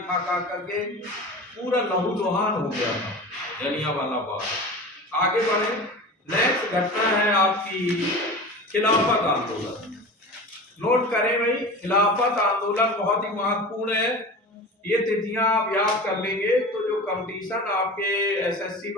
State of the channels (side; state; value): both; normal; correlation 0.33